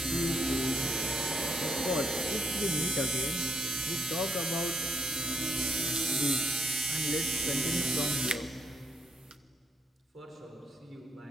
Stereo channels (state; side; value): normal; both; correlation 0.75